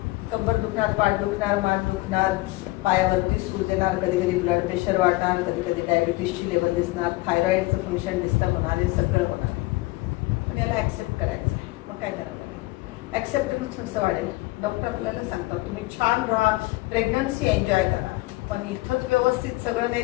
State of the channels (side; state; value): right; quieter; 20.9 dB